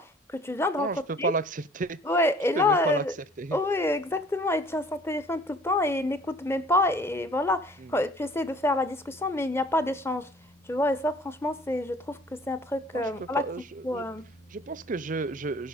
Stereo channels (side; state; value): both; normal; correlation 0.53